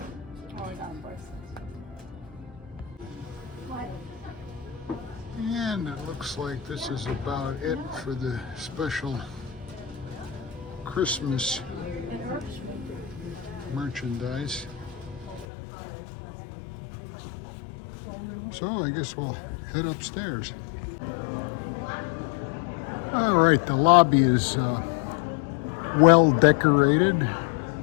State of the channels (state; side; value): drops out; right; at 15.5 s